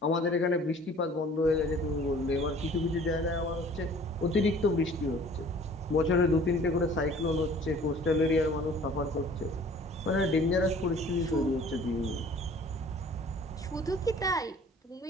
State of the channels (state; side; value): normal; both; correlation 0.51